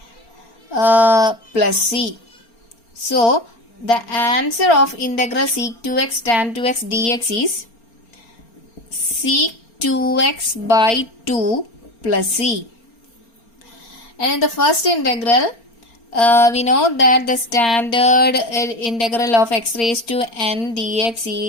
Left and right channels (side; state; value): right; late; 4.3 ms